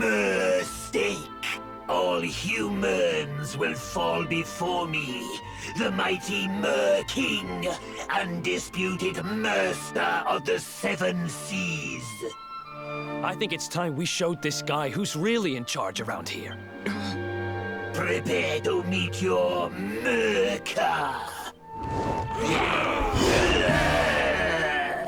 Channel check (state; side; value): identical; both; correlation 1.00